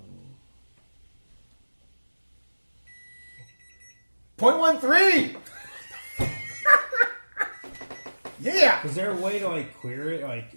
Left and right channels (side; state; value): both; inverted; correlation -1.00